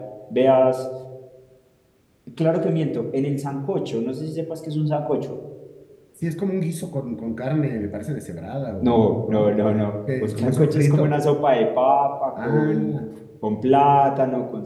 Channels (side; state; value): both; identical; correlation 1.00